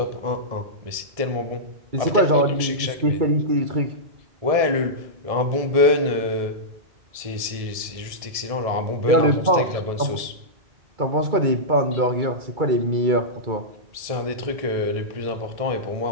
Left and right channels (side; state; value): left; late; 1.7 ms